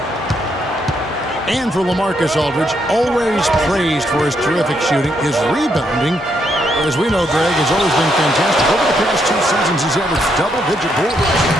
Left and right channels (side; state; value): both; normal; correlation 0.76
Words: And for LaMarcus Aldridge, always praised for his terrific shooting, his rebounding, as we know, Greg, has always been fantastic. Over the past 2 seasons, he's averaged double-digit boards.